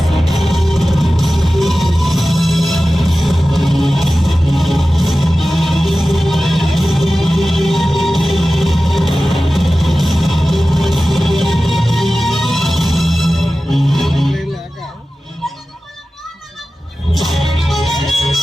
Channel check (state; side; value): normal; both; correlation 0.95